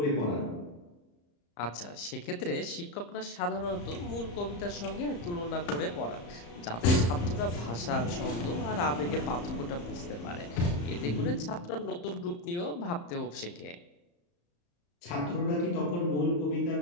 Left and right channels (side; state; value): right; late; 34 ms